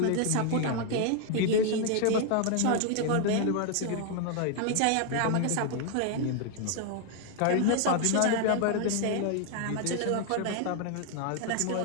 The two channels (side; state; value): both; different; correlation 0.00